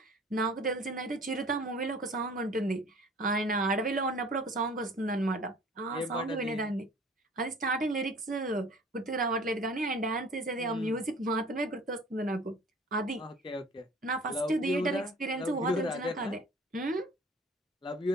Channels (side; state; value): both; normal; correlation 0.48